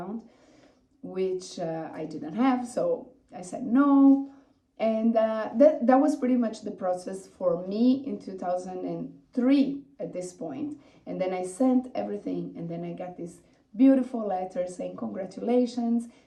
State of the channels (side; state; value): both; identical; correlation 1.00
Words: which I didn't have, so I said no. And that was pretty much the process for me in 2003 at this point. And then I sent everything, and then I got this beautiful letter saying, congratulations,